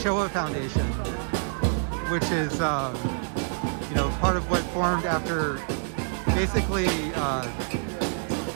Foundation, which is part of what formed after, basically, I'm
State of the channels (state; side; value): silent; left; digital silence